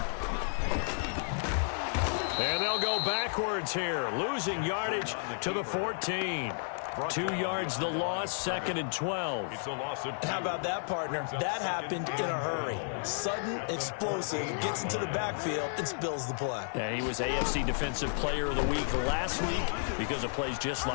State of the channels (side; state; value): right; silent; 56 dB below the other